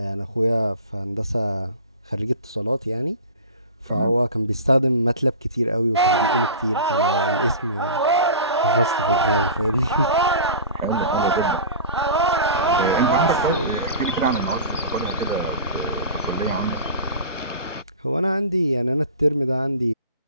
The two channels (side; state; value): both; inverted; correlation -0.35